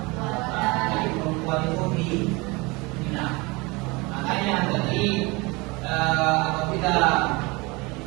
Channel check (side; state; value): left; quieter; 25.5 dB